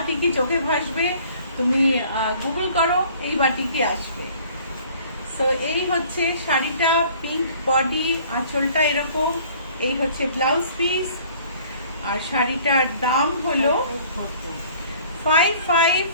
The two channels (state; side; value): inverted; both; correlation -0.53